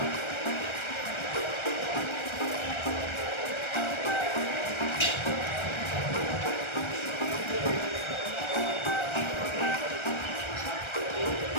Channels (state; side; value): late; right; 1.3 ms